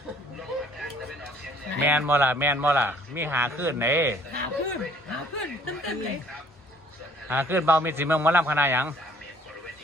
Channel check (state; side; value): normal; both; correlation 0.57